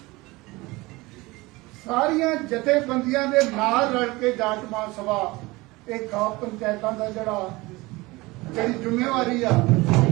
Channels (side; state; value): left; quieter; 22.0 dB